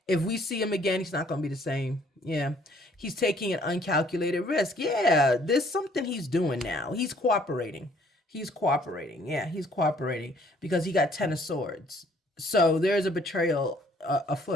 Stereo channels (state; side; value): normal; both; correlation 0.61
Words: If we see him again, he's not going to be the same. Yeah. He's taking an uncalculated risk. Yeah. There's something he's doing now. He's cooperating. Yeah, he's cooperating because he got 10 of Swords. So there's a betrayal